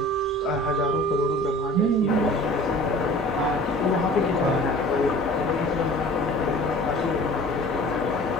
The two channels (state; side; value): normal; both; correlation 0.45